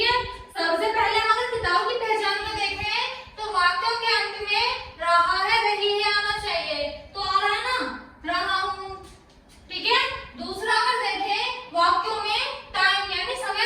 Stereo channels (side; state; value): both; identical; correlation 1.00